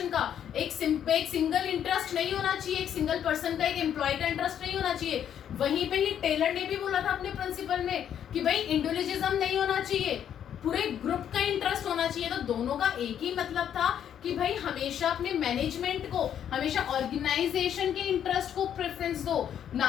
का, एक सिंगल इंटरेस्ट नहीं होना चाहिए, एक सिंगल पर्सन का, एक एम्प्लॉय का इंटरेस्ट नहीं होना चाहिए। वहीं पे ही टेलर ने भी बोला था अपने प्रिंसिपल में कि भाई इंडिविजुअलिज्म नहीं होना चाहिए, पूरे ग्रुप का इंटरेस्ट होना चाहिए। तो दोनों का एक ही मतलब था कि भाई हमेशा अपने मैनेजमेंट को, हमेशा ऑर्गेनाइजेशन के इंटरेस्ट को प्रेफरेंस दो,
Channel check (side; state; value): right; quieter; 9.5 dB